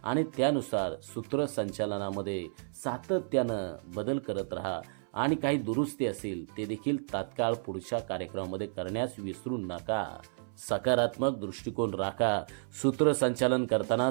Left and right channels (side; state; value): left; silent; 57 dB below the other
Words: आणि त्यानुसार सूत्रसंचालनामध्ये सातत्यानं बदल करत राहा आणि काही दुरुस्ती असेल ते देखील तात्काळ पुढच्या कार्यक्रमामध्ये करण्यास विसरू नका. सकारात्मक दृष्टिकोन राखा. सूत्रसंचालन करताना